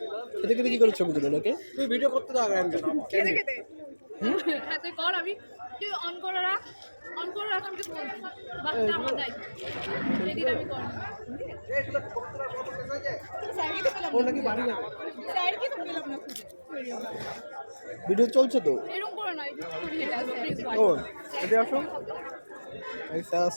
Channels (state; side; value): inverted; both; correlation -1.00